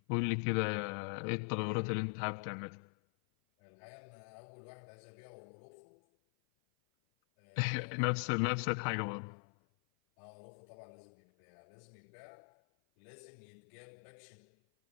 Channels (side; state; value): right; silent; 50 dB below the other